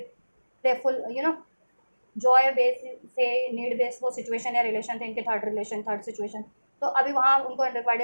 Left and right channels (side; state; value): both; inverted; correlation -1.00